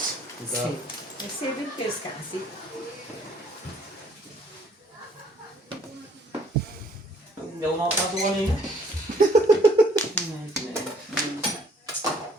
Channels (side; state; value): both; normal; correlation 0.60